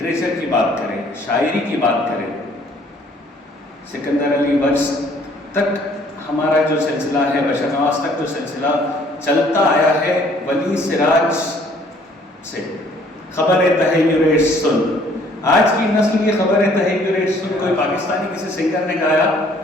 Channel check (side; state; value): both; normal; correlation 0.60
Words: کی بات کریں، شاعری کی بات کریں، سکندر علی وجز تک ہمارا جو سلسلہ ہے، بشر نواز تک جو سلسلہ چلتا آیا ہے، ولی سراج سے خبر تحیر سن، آج کی نسل کی خبر تحیر سن کوئی پاکستانی کسی سنگر نے گایا